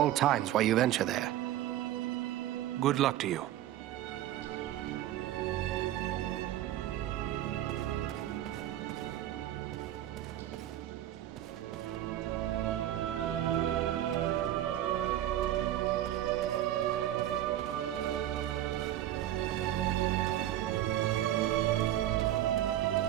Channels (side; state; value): left; quieter; 12.9 dB